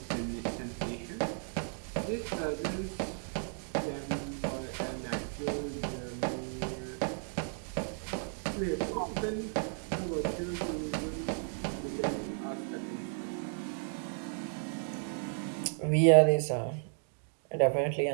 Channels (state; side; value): silent; left; 55 dB below the other